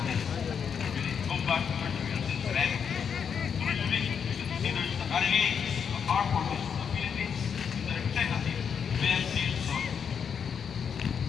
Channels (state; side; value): quieter; right; 7.1 dB